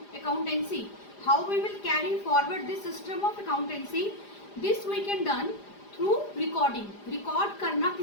accountancy, how we will carry forward this system of accountancy. This we can done through recording. Record करना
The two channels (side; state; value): right; late; 4.9 ms